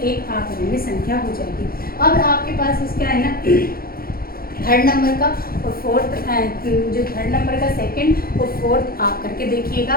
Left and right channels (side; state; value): right; late; 0.43 ms